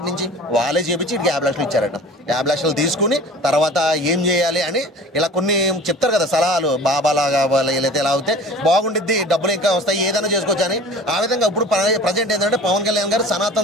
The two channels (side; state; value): both; normal; correlation 0.42